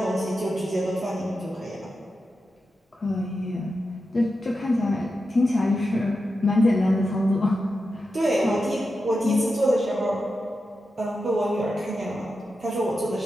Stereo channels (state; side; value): normal; both; correlation 0.90